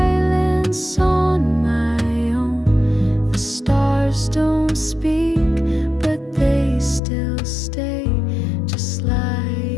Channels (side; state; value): right; drops out; at 7.0 s